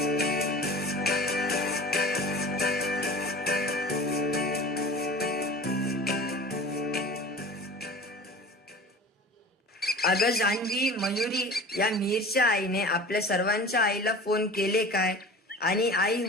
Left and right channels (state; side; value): normal; both; correlation 0.39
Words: अगं जान्हवी, मयुरी, या मीरच्या आईने आपल्या सर्वांच्या आईला फोन केले काय आणि आई